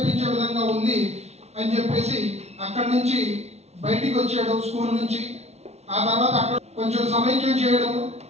విధంగా ఉంది అని చెప్పేసి అక్కడి నుంచి బయటికి వచ్చాడు స్కూల్ నుంచి. ఆ తర్వాత అక్కడ కొంచెం సమైక్యం చేయడం,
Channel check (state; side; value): late; left; 0.31 ms